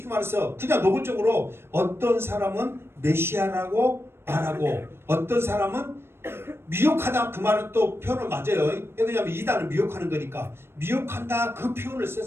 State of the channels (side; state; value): left; late; 0.12 ms